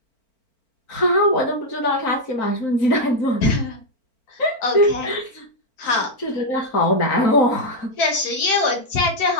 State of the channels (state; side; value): late; right; 4.4 ms